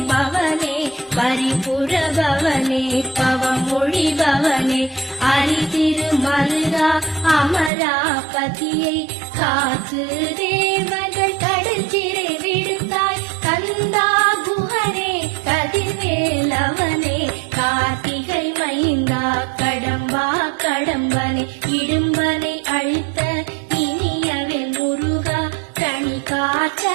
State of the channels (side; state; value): left; drops out; at 7.7 s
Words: பவனே பரிபுர பவனே பவமொழி பவனே அரிதிருமல்கா அமராபதியை காத்து தேவர்கள் கடற்சிறை